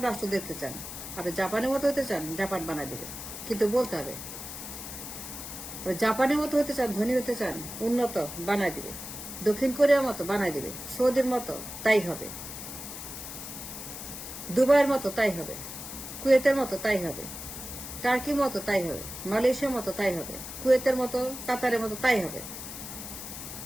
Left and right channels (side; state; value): left; noise; hiss, 9 dB below the sound